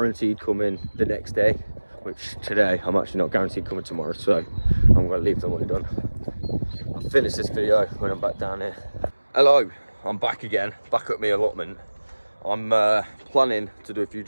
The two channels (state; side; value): inverted; both; correlation -1.00